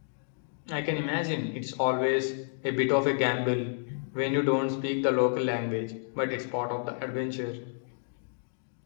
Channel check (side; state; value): right; silent; digital silence